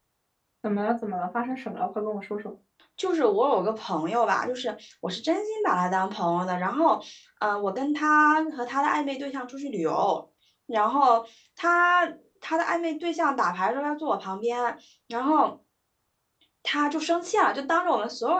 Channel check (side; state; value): both; identical; correlation 1.00